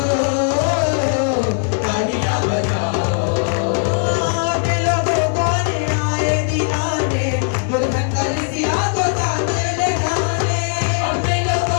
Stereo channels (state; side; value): silent; right; 64 dB below the other